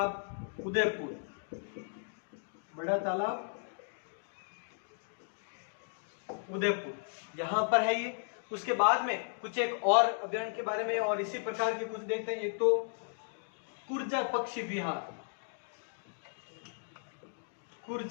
उदयपुर। बड़ा तालाब उदयपुर यहां पर है ये। उसके बाद में कुछ एक और अभ्यारण्य के बारे में और इसी प्रकार के कुछ देखते हैं। एक तो कुर्जा पक्षी विहार।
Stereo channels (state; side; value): silent; right; digital silence